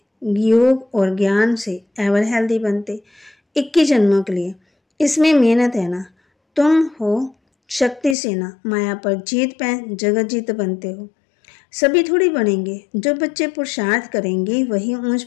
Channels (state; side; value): drops out; right; at 8.2 s